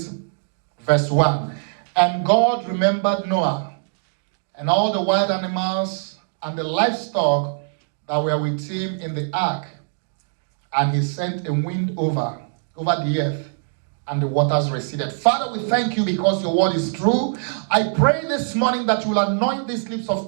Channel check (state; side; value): silent; left; digital silence